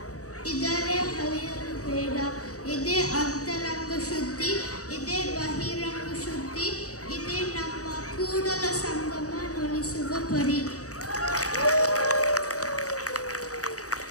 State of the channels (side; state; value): right; late; 0.66 ms